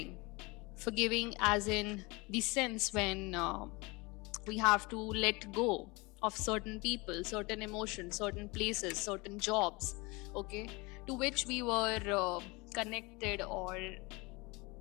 as in the sense when we have to let go of certain people, certain emotions, certain places, certain jobs, okay, to which we were connected or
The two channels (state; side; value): quieter; right; 25.6 dB